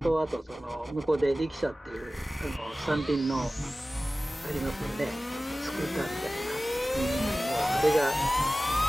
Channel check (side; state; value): both; normal; correlation 0.97